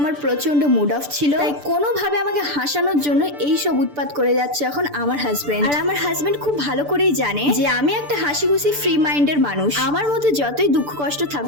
আমার প্রচন্ড মুড অফ ছিল, তাই কোনোভাবে আমাকে হাসানোর জন্য এই সব উৎপাত করে যাচ্ছে এখন আমার হাজবেন্ড। আর আমার হাজবেন্ড খুব ভালো করেই জানে যে আমি একটা হাসি খুশি ফ্রি মাইন্ডের মানুষ। আমার মধ্যে যতই দুঃখ কষ্ট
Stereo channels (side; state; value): left; late; 6.9 ms